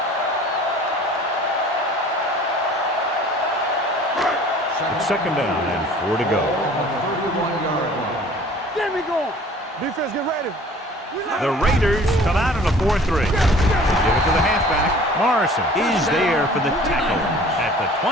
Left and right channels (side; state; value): both; normal; correlation 0.48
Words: It's 2nd down and 4 to go. Get me going. Defense, get ready. The Raiders come out in a 4-3. They give it to the halfback. Morrison is there for the tackle at the